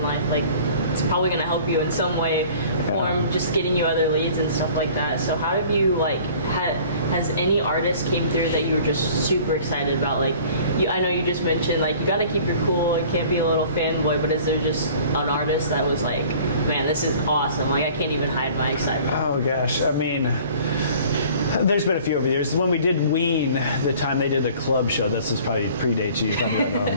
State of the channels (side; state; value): both; inverted; correlation -0.49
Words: life, it's probably going to help you in some way, form just getting you other leads and stuff like that. So how have you has any artist came through that you were just super excited about? I know you just mentioned you got to keep your cool and can't be a little fanboy, but is there just an artist that was like, man, this is awesome? I can't even hide my excitement. Oh gosh, I mean, there's been a few over the years. When we did Ween, the time they did the club show, this is probably predates you probably don't